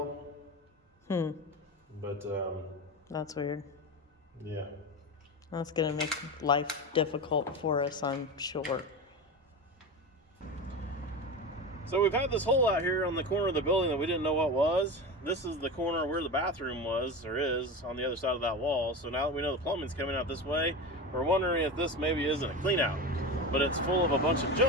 But that's weird. yeah. That's gonna make life difficult for us, I'm sure. So we've had this hole out here on the corner of the building that we didn't know what was. This is the corner where the bathroom was, or is, on the other side of that wall. So now that we know the plumbing's coming out this way, we're wondering if this maybe isn't a clean out. But it's full of a bunch of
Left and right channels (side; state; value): both; normal; correlation 0.24